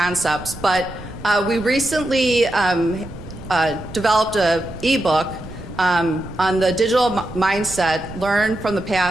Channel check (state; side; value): noise; right; rumble, 15 dB below the sound